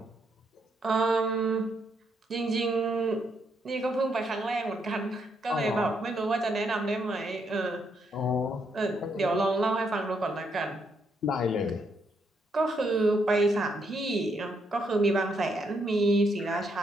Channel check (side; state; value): both; normal; correlation 0.76